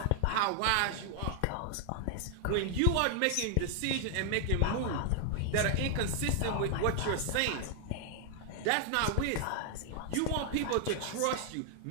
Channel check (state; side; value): different; both; correlation 0.00